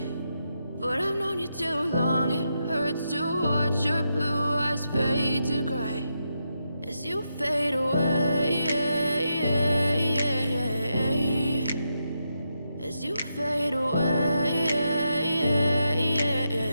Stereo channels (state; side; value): inverted; both; correlation -0.84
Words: But I've known you too long, it hurts to watch your blue eyes fade to gray as you fade away, as you fade away.